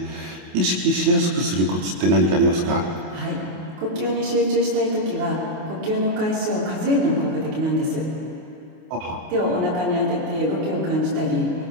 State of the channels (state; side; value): late; left; 29 ms